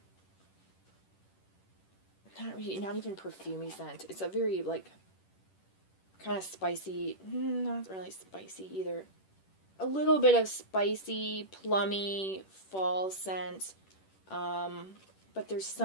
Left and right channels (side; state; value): right; late; 10 ms